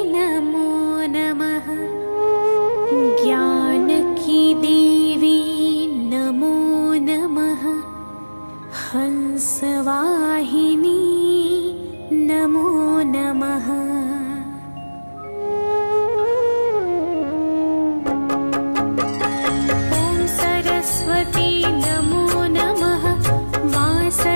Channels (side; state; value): both; inverted; correlation -1.00